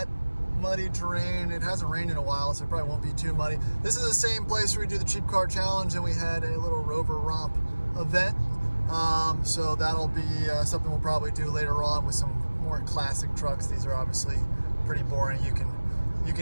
muddy terrain. It hasn't rained in a while, so it probably won't be too muddy. This is the same place where we do the cheap car challenge, and we had a little Rover romp event. So that'll be something we'll probably do later on with some more classic trucks. These are obviously pretty boring. You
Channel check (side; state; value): both; inverted; correlation -1.00